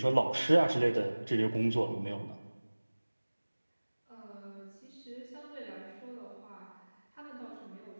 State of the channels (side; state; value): both; inverted; correlation -1.00